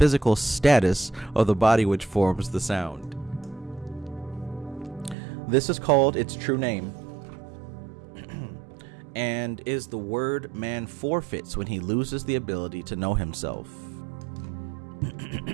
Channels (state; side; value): drops out; left; at 5.2 s